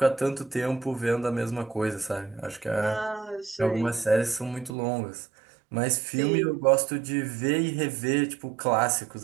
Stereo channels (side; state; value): left; drops out; at 4.7 s